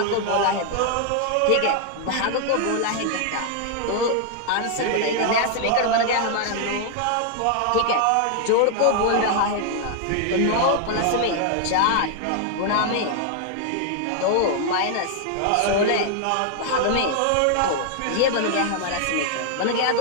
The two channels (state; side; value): different; both; correlation 0.00